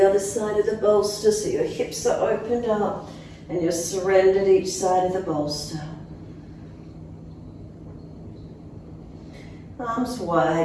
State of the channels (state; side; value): identical; both; correlation 1.00